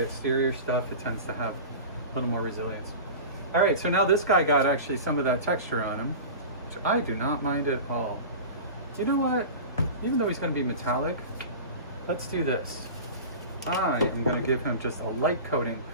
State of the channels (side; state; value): both; inverted; correlation -0.33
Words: exterior stuff. It tends to have a little more resilience. All right, so now this guy got actually some of that texture on him, which I do not mind at all. You know what? Even though he's going to be metallic, let's do this. I am going to give him just a light coating